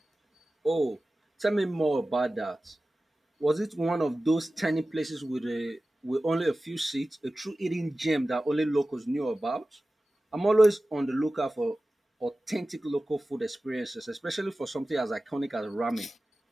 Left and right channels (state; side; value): normal; both; correlation 0.96